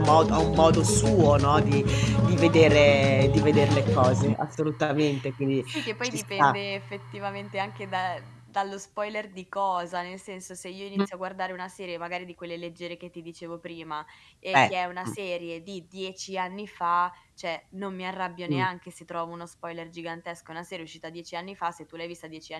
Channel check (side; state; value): both; identical; correlation 1.00